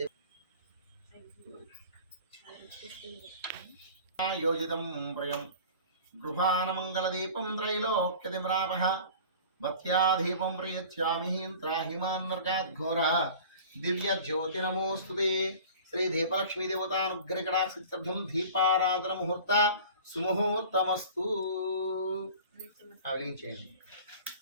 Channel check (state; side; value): inverted; both; correlation -0.42